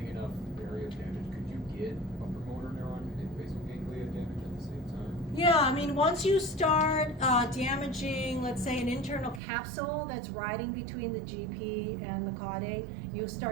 enough area of damage, could you get upper motor neuron and basal ganglia damage at the same time? Yeah, I mean, once you start damaging, let's say, an internal capsule that's riding between the GP and the caudate, you'll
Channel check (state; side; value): drops out; left; at 9.4 s